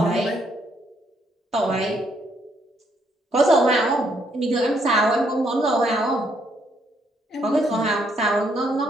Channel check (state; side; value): normal; both; correlation 0.72